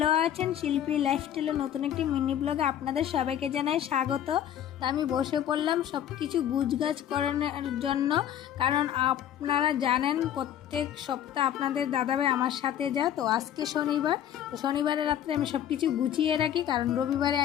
আছেন। শিল্পী লাইফস্টাইলের নতুন একটি মিনি ব্লগে আপনাদের সবাইকে জানাই স্বাগত। তো আমি বসে পড়লাম সব কিছু গুছগাছ করানোর জন্য, কারণ আপনারা জানেন প্রত্যেক সপ্তাহ আপনাদের দাদাভাই আমার সাথে যায়। তো আজকে শনিবার, তো শনিবারের রাত্রে আমি সব কিছু গুছিয়ে রাখি, কারণ রবিবারে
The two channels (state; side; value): quieter; right; 10.5 dB